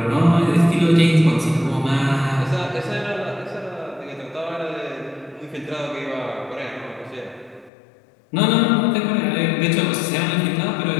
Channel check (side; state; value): right; drops out; at 7.7 s